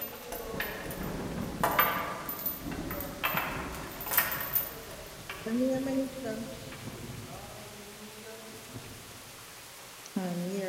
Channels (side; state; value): both; identical; correlation 1.00